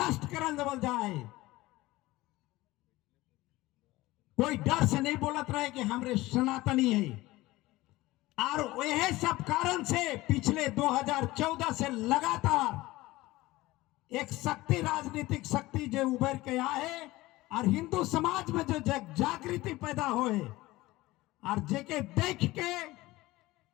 करल देवल जाए। कोई डर से नहीं बोलत रहे कि हमरे सनातनी है। और यह सब कारण से पिछले 2014 से लगातार एक शक्ति, राजनीतिक शक्ति जो उभर के आए और हिंदू समाज में जो जागृति पैदा होए और जेके देख के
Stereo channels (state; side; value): quieter; right; 18.9 dB